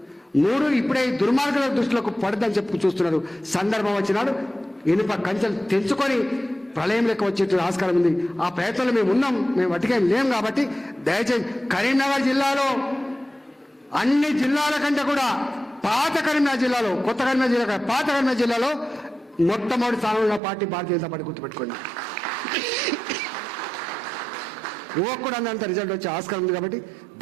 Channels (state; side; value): drops out; left; at 20.4 s